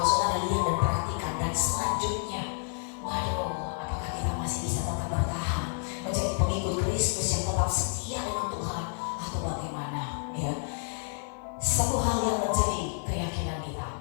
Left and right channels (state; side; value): silent; right; digital silence